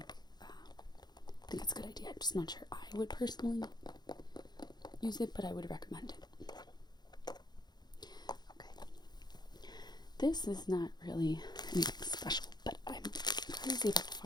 think it's a good idea. I'm just not sure I would personally use it, but I would recommend it. Okay. This is not really anything special, but I'm crazy about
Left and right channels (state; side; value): late; right; 0.20 ms